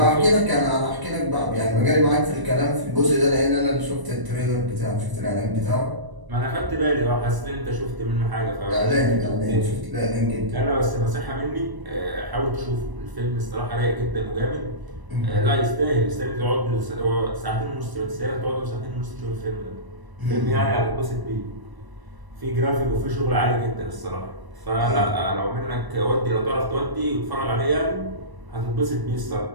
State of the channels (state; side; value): late; left; 1.0 ms